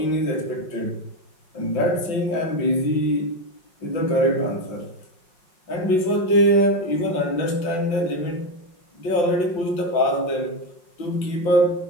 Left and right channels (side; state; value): right; late; 5.5 ms